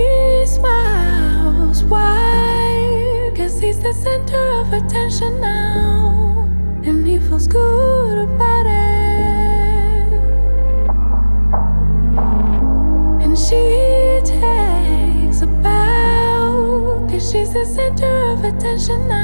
smiles wide. he's the center of attention now, and he feels good about it. And she takes a bow, 'cause she's the center of attention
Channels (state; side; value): inverted; both; correlation -1.00